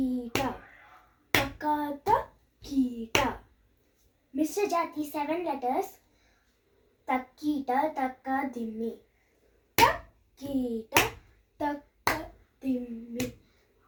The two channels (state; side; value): identical; both; correlation 1.00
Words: తక త కీట. మిశ్ర జాతి 7 letters. తక్కీట తక్క దిమ్మి తక్కీట తక్క దిమ్మి